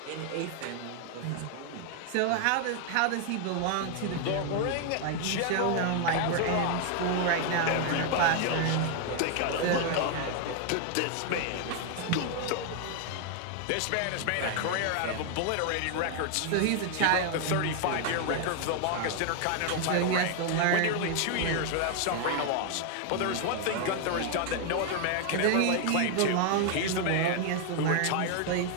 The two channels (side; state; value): both; different; correlation 0.00